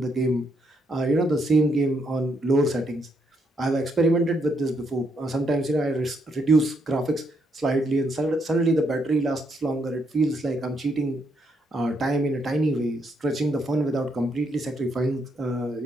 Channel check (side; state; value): both; normal; correlation 0.76